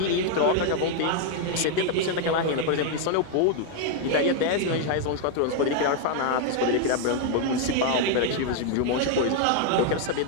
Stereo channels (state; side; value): different; both; correlation 0.00